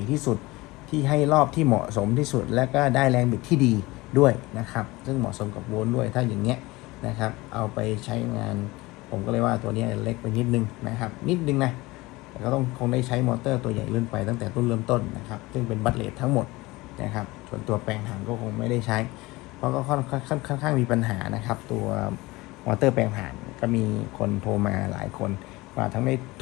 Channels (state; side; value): quieter; right; 21.2 dB